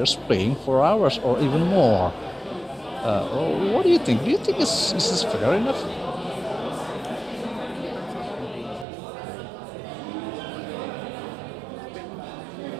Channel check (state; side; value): drops out; left; at 8.8 s